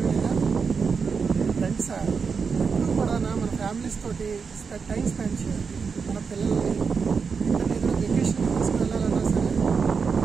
లేదా? ఫ్రెండ్సా ఎప్పుడు కూడా మన ఫ్యామిలీస్ తోటి టైం స్పెండ్ చేయాలి. మన పిల్లల్ని ఏదైనా వెకేషన్ తీసుకెళ్ళాలన్నా సరే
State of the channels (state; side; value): quieter; left; 5.5 dB